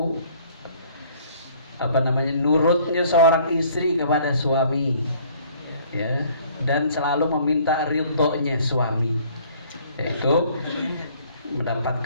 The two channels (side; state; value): both; inverted; correlation -0.57